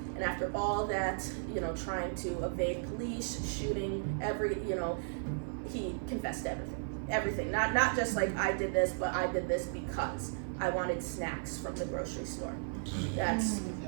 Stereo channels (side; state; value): left; silent; 54 dB below the other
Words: And after all that, trying to evade police, shooting, he confessed to everything. Not just like I did this, but I did this because I wanted snacks from the grocery store.